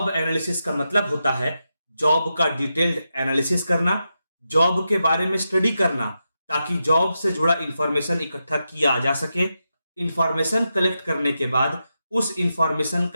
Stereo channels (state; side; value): inverted; both; correlation -0.87